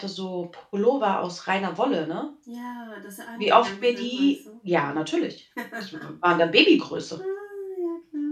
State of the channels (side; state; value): both; identical; correlation 1.00